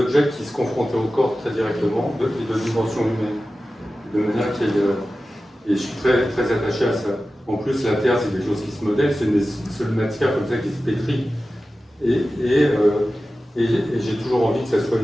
qui se confrontaient au corps très directement, et de dimension humaine, de manière qu'il y ait... Et je suis très, très attaché à ça. En plus, la terre, c'est quelque chose qui se modèle, c'est une seule matière comme ça qui se pétrit. Et j'ai toujours envie que ça soit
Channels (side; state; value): both; normal; correlation 0.95